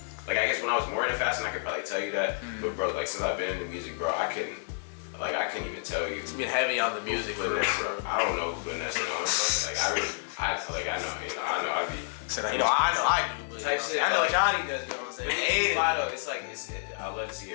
like I guess when I was more into fashion, I could probably tell you that. But bro, like since I've been into music, bro, I couldn't even tell you. It's been heavy on the music. I don't know who putting that shit on. Bro. Like I know, I be. I do. Type shit. I know Johnny does. You know what I'm saying? But it's vital. It's like I love to see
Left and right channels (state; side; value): silent; right; 58 dB below the other